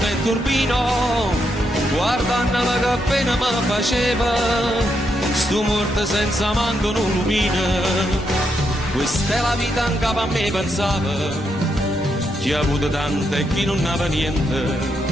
turbino, guardandola che appena mi faceva, stu morto senza manco un lumino. Questa è la vita anche a me pensava, chi ha avuto tante e chi non aveva niente.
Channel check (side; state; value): both; normal; correlation 0.80